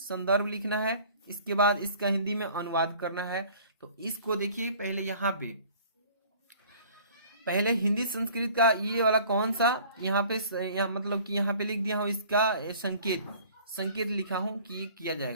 लिखना है। इसके बाद इसका हिंदी में अनुवाद करना है। तो इसको देखिए पहले यहाँ पे, पहले हिंदी संस्कृत का ये वाला कौन सा, यहाँ पे मतलब कि यहाँ पे लिख दिया हूँ इसका संकेत लिखा हूं कि ये किया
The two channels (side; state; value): both; inverted; correlation -0.50